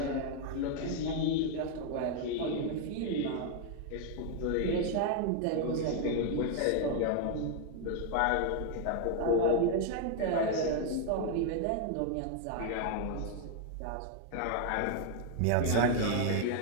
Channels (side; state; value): both; different; correlation 0.00